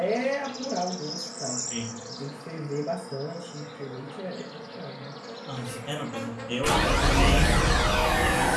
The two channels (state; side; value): identical; both; correlation 1.00